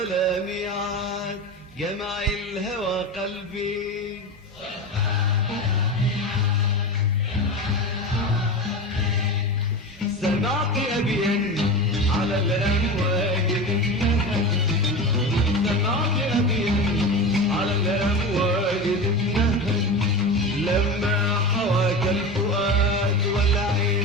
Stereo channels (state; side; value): normal; both; correlation 0.26